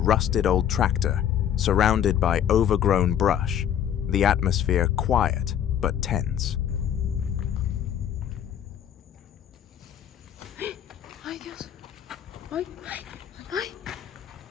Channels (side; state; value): right; quieter; 9.8 dB